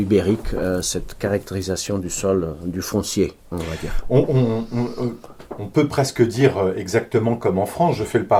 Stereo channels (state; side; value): identical; both; correlation 1.00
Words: cette caractérisation du sol, du foncier, on va dire. On peut presque dire exactement comme en France, je fais le